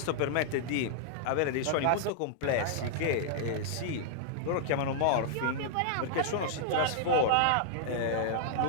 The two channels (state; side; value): different; both; correlation -0.01